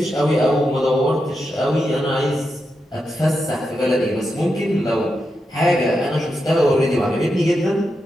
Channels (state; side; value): normal; both; correlation 0.87